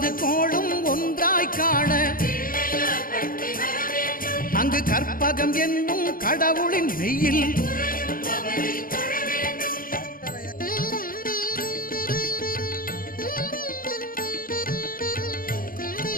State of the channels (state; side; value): late; right; 0.41 ms